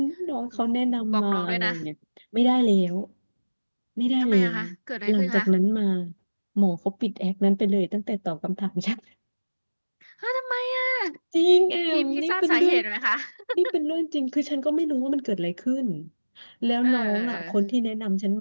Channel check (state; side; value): inverted; both; correlation -1.00